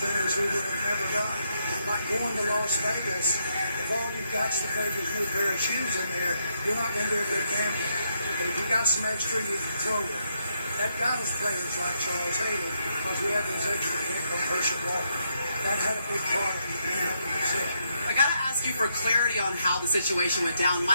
we would have never done. Like going to Las Vegas, if all you've got is the Vegas new pair of shoes in there, you're not going to do a good gambling. But if you got some extra, you can throw it. That got us players like Charles Haley because we have those extra pick on Herschel Walker. That had a big part of it. I got to ask you for clarity on how the situation went down.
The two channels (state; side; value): inverted; both; correlation -0.78